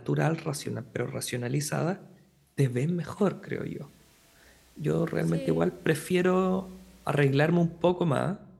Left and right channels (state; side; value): identical; both; correlation 1.00